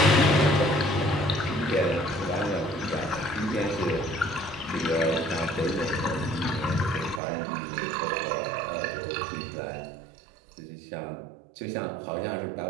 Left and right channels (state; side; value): drops out; left; at 7.2 s